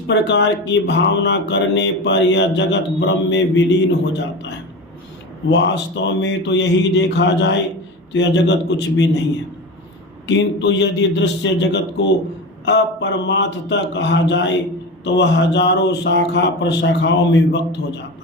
की भावना करने पर यह जगत ब्रह्म में विलीन हो जाता है। वास्तव में तो यही देखा जाए तो यह जगत कुछ भी नहीं है, किंतु यदि दृश्य जगत को अपरमार्थता कहा जाए तो वह हजारों शाखा प्रशाखाओं में विभक्त हो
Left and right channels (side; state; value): both; normal; correlation 0.26